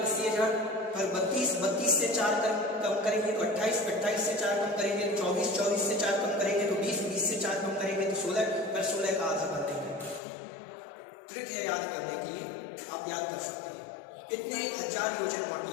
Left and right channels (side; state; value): right; drops out; at 10.2 s